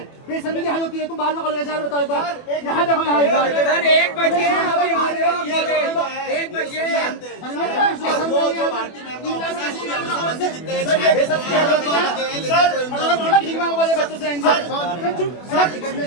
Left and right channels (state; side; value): late; right; 24 ms